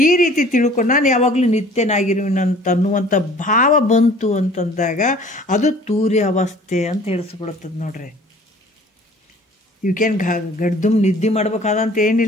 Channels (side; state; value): both; normal; correlation 0.50